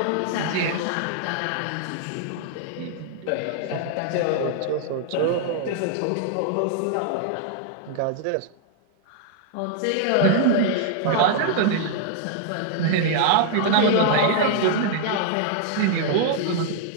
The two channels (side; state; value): both; different; correlation 0.00